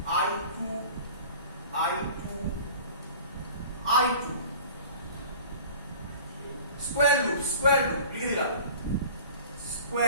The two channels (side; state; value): both; inverted; correlation -0.43